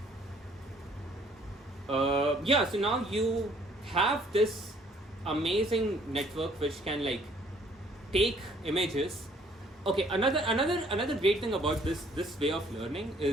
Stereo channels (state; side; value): normal; both; correlation 0.61